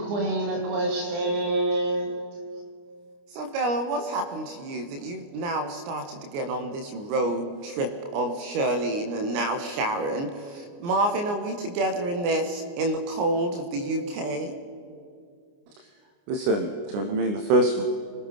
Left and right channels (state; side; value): late; left; 29 ms